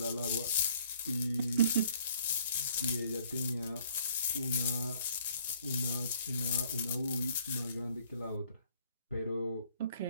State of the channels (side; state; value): both; inverted; correlation -0.60